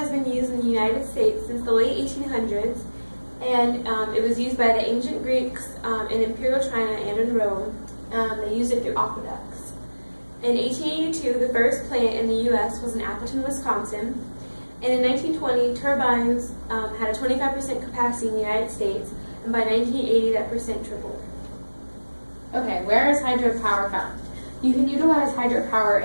been used in the United States since the late 1800s, and it was used by the ancient Greeks in Imperial China and in Rome. They used it through aqueducts. In 1882, the first plant in the U.S. was in Appleton, Wisconsin. And in 1920, turbines had a 25% capacity in the United States, and by 1980, that percent tripled. Okay, where is hydropower found? You can utilize hydropower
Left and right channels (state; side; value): inverted; both; correlation -1.00